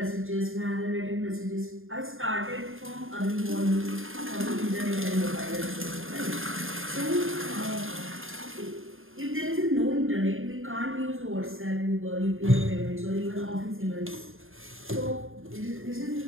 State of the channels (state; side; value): late; left; 0.60 ms